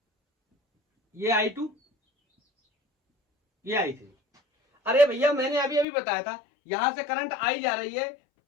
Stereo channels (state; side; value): drops out; right; at 5.9 s